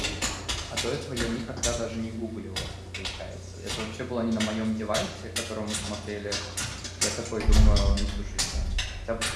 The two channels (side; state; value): both; identical; correlation 1.00